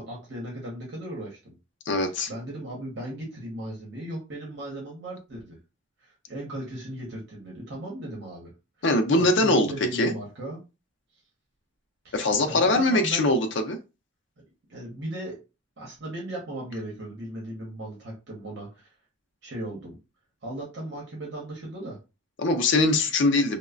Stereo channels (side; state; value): both; normal; correlation 0.21